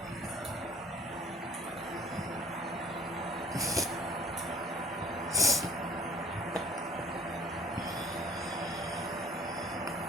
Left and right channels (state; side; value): normal; both; correlation 0.50